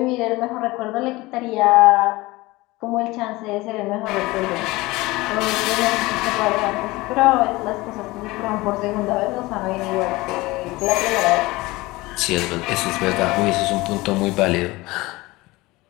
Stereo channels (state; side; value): quieter; right; 20.9 dB